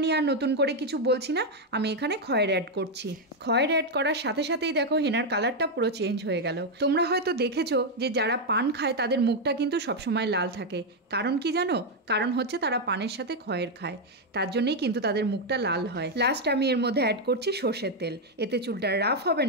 নিয়ে আর নতুন করে কিছু বলছি না, আমি এখানে খয়ের অ্যাড করছি। খয়ের অ্যাড করার সাথে সাথেই দেখো হেনার কালারটা পুরো চেঞ্জ হয়ে গেল। তোমরা হয়তো দেখেছো যে যারা পান খায় তাদের মুখটা কিন্তু সবসময় লাল থাকে। কারণ কি জানো? কারণ হচ্ছে তারা পানের সাথে খয়ের খায়, তার জন্যই কিন্তু তাদের মুখটা লাল হয়। লাস্ট আমি এর মধ্যে অ্যাড করছি সর্ষের তেল। এতে চুলটা রাফ হবে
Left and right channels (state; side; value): normal; both; correlation 0.02